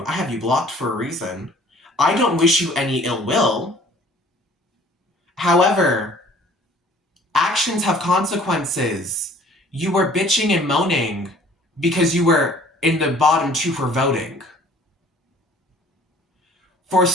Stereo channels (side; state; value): both; normal; correlation 0.53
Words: I have you blocked for a reason. I don't wish you any ill will. However, actions have consequences. You were bitching and moaning because you were in the bottom two for voting. For